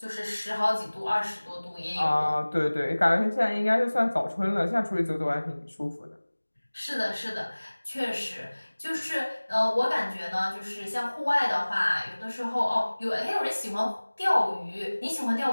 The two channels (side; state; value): both; inverted; correlation -1.00